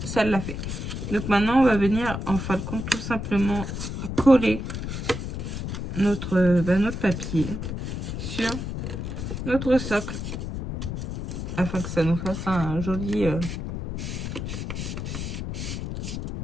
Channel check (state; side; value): noise; left; rumble, 5 dB below the sound